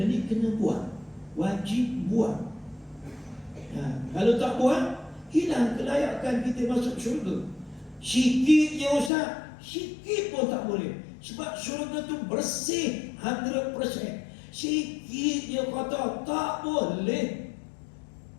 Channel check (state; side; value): drops out; right; at 9.1 s